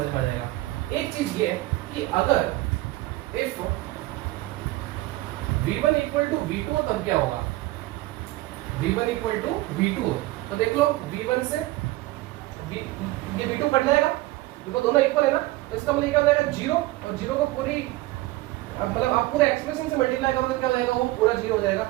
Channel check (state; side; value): quieter; left; 18.6 dB